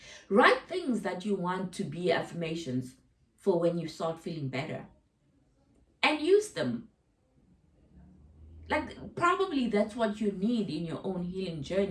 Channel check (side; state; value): both; identical; correlation 1.00